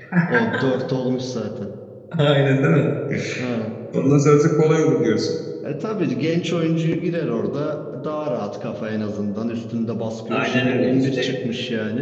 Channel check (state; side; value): identical; both; correlation 1.00